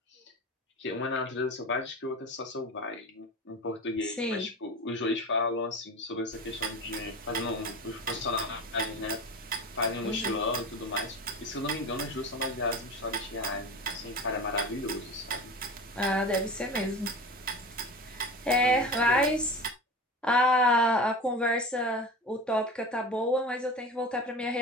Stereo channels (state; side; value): normal; both; correlation 0.31